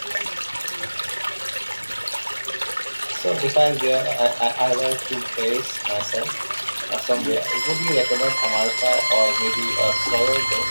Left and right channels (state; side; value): inverted; both; correlation -1.00